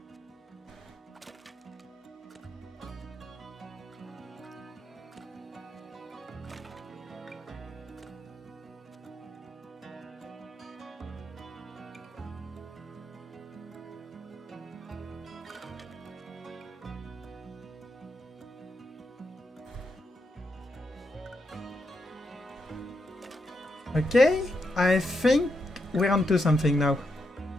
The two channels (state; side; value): normal; both; correlation 0.82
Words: Okay, I think we're onto something now.